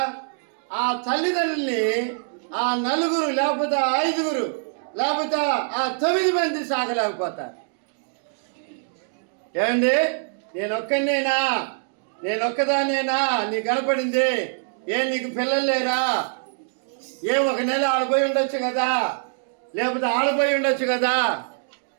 ఆ తల్లిదండ్రుల్ని ఆ 4 లేకపోతే 5 లేకపోతే ఆ 9 మంది సాగలేకపోతారు. ఏమండి, నేనొక్కదానేనా నీ కనపడింది? నీకు పిల్లలు లేరా? ఒక నెల ఆడిపోయి ఉండొచ్చు కదా, లేకపోతే ఆడిపోయి ఉండొచ్చు కదా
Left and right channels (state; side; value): silent; left; digital silence